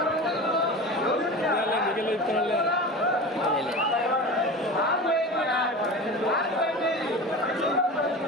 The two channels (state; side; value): normal; both; correlation 0.31